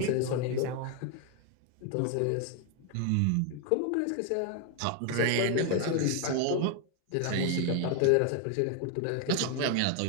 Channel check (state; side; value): different; both; correlation 0.01